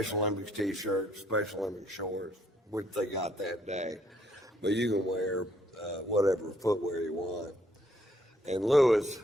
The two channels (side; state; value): both; normal; correlation 0.68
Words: Olympics T-shirts, Special Olympics shorts, which they got that day. But you can wear whatever footwear you want. And Lewis,